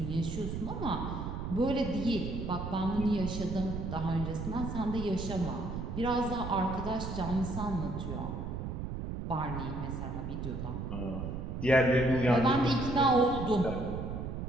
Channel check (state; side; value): noise; right; rumble, 5 dB below the sound